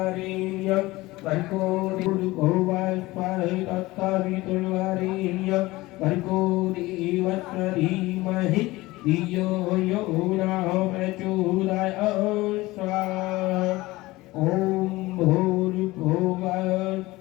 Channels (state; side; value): quieter; right; 19.7 dB